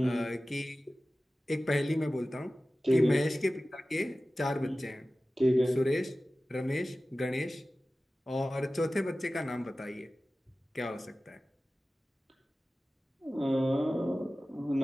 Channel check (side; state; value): both; normal; correlation 0.96